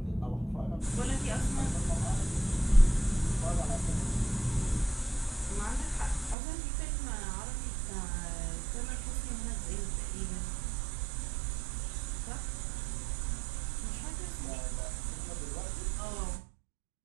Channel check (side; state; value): left; drops out; at 6.4 s